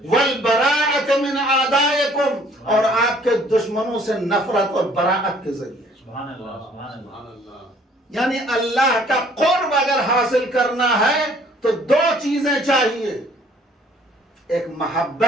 والبراءۃ من اعدائکم، اور آپ کے دشمنوں سے نفرت اور براءت کے ذریعے. سبحان اللہ، سبحان اللہ. یعنی اللہ کا قرب اگر حاصل کرنا ہے تو 2 چیزیں چاہیے. ایک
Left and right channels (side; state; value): both; normal; correlation 0.58